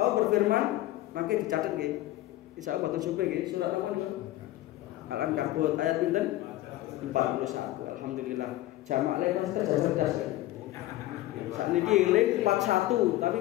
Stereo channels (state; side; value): quieter; right; 15.9 dB